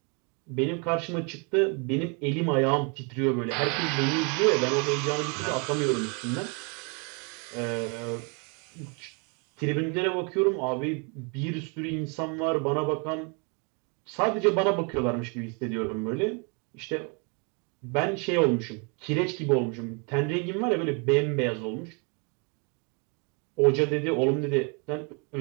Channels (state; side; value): quieter; left; 34.5 dB